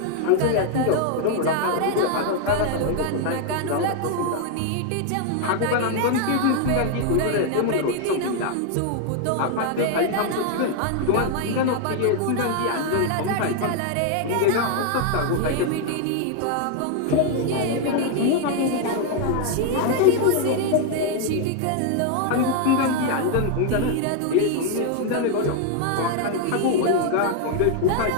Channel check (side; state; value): both; different; correlation 0.00